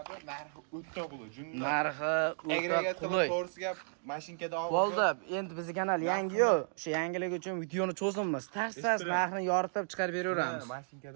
narxi o'ta qulay. Narxi o'ta qulay. To'g'risiga mashinkada olib. Bo'ldi, endi bizning kanal yangi-yu, o'sha yangilik uchun videoni cho'zimiz. Tars narxini yoritib chiqarib beraveramiz.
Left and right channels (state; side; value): silent; left; digital silence